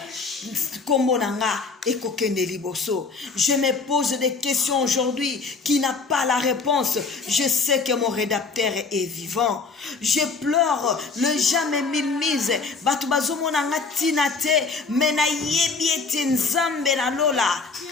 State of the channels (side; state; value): right; quieter; 4.4 dB